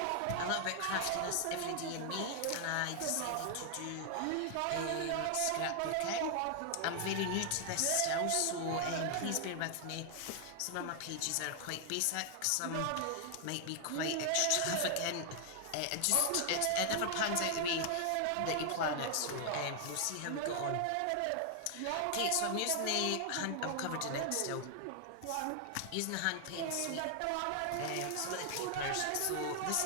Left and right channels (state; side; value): different; both; correlation 0.00